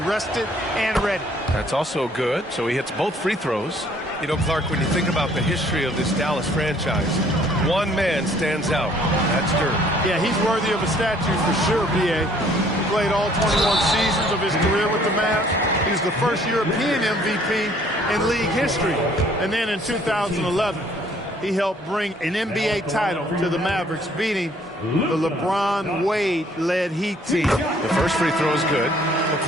and ready. That's also good. So he hits both free throws. You know, Clark, when you think about the history of this Dallas franchise, one man stands out. That's Dirk. Yeah, he's worthy of a statue for sure, B.A. He played all 21 seasons of his career with the Mavs. He was the first European MVP in league history. And then in 2011, he helped bring an NBA title to the Mavericks, beating the LeBron Wade-led Heat team. The first free throw is good. Well,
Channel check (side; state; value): both; normal; correlation 0.60